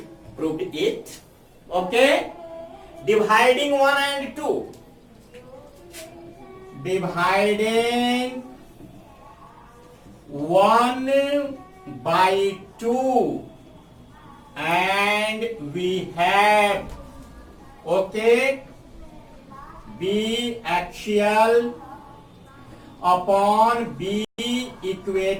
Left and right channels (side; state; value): both; identical; correlation 1.00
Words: proved it. Okay, dividing 1 and 2. Dividing 1 by 2 and we have, okay, B axial upon B